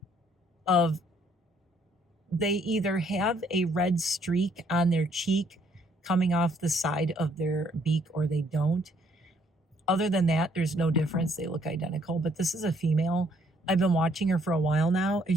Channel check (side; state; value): both; normal; correlation 0.66